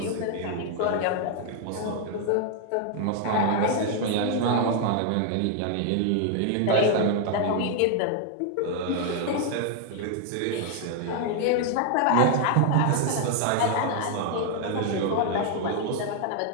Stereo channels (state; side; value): different; both; correlation 0.00